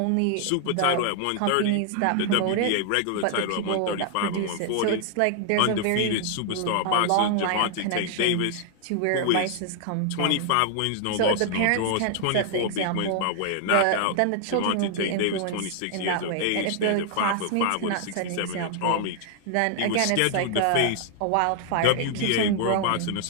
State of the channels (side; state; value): both; different; correlation 0.00